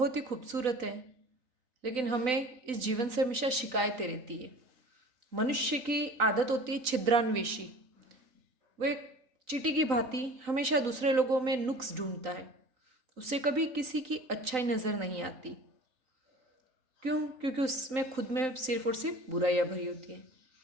ही खूबसूरत है, लेकिन हमें इस जीवन से हमेशा शिकायतें रहती है। मनुष्य की आदत होती है छिद्रान्वेषी। वो एक चींटी की भांति हमेशा दूसरे लोगों में नुक्स ढूंढता है। उसे कभी किसी की अच्छाई नज़र नहीं आती। क्यों? क्योंकि उसमें खुद में सिर्फ और सिर्फ बुराइयाँ भरी होती है।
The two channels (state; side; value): late; left; 3.9 ms